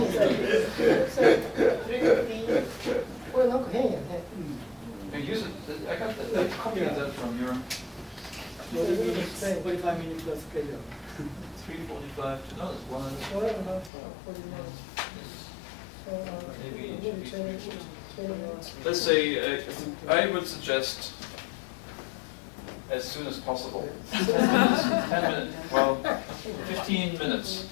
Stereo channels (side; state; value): right; drops out; at 13.9 s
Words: You use it. I got that copy of that from your 45 minutes plus schedule. 3:45 to no, it's 1 hour. 40 minutes. So, Maybe it maybe should be 20 minutes. Let's say I would suggest as soon as possible. 10 minutes. 10 minutes. Well, 15 minutes.